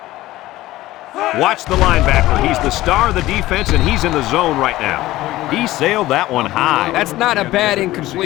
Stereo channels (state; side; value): quieter; right; 16.6 dB